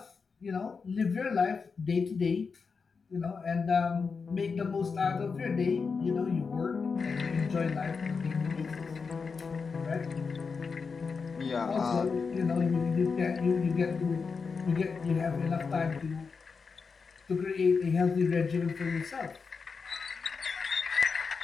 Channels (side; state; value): right; quieter; 5.1 dB